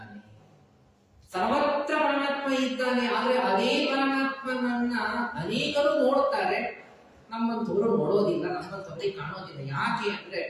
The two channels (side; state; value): both; identical; correlation 1.00